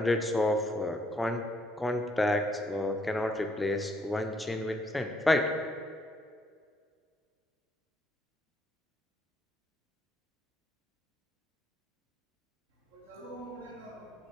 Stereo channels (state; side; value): normal; both; correlation 0.69